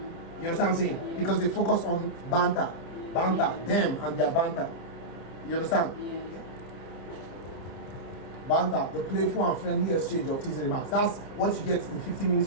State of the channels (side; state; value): right; late; 30 ms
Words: You understand what I'm saying? Because they focus on banter, them and their banter. You understand? Banter, the playful and friendly exchange of teasing remarks. That's what you get in 15 minutes